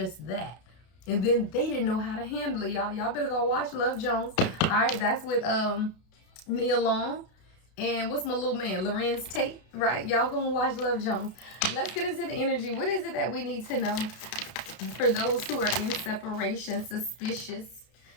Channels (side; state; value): right; late; 32 ms